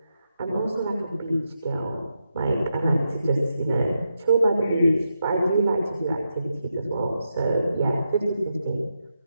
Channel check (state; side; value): inverted; both; correlation -0.85